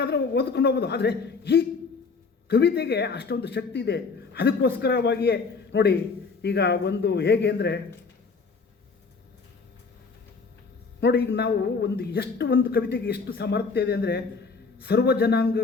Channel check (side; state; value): right; quieter; 4.7 dB